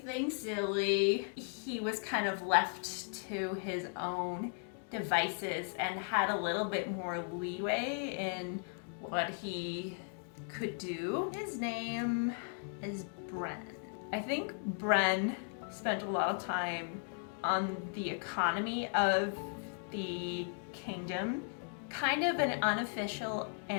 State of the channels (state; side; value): silent; right; 53 dB below the other